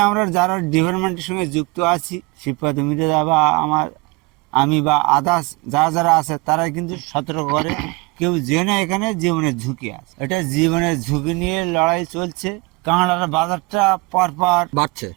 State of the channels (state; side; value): quieter; left; 26.1 dB